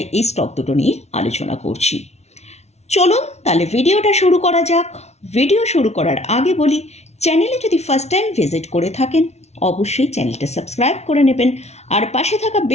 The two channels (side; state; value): right; late; 0.31 ms